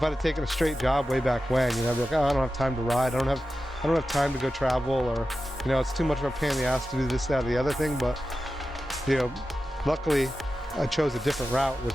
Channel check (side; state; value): both; normal; correlation 0.93